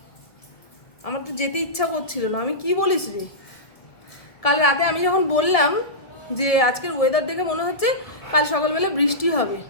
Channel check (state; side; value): late; right; 1.4 ms